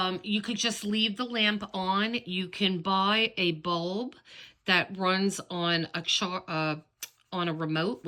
you could just leave the lamp on. You can buy a bulb that runs on a remote,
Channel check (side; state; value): both; identical; correlation 1.00